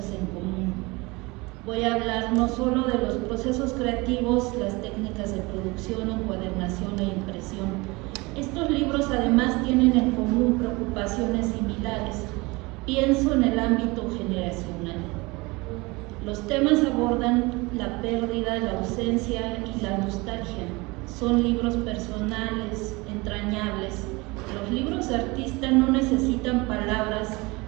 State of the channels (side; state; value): left; quieter; 24.5 dB